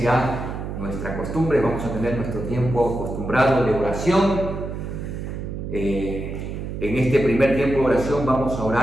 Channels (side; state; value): right; noise; hum, 6 dB below the sound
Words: ya nuestra costumbre, vamos a tener nuestro tiempo acostumbrado de oración. En este primer tiempo de oración vamos a